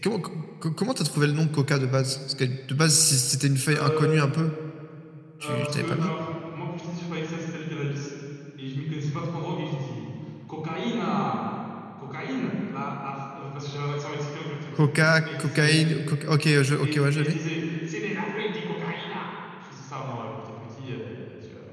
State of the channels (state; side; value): identical; both; correlation 1.00